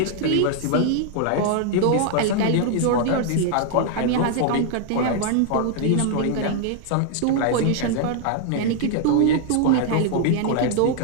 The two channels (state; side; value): different; both; correlation 0.00